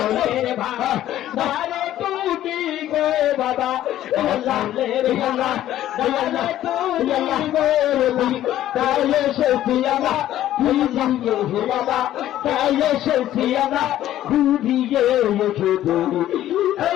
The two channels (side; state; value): right; quieter; 12.9 dB